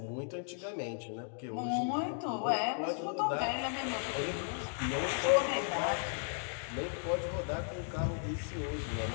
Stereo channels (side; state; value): right; silent; 54 dB below the other